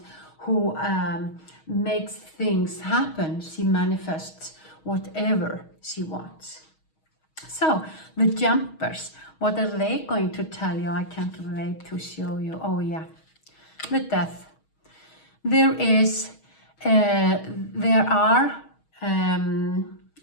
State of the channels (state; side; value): late; right; 6.3 ms